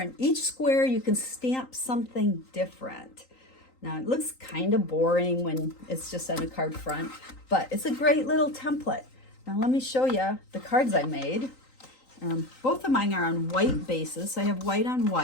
each square you can stamp something different. Now it looks kind of boring when it's just on a card front, but it's a great little template. Now let me show you the cards I made. Both of mine are on white bases. So I have white on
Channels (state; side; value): late; right; 3.9 ms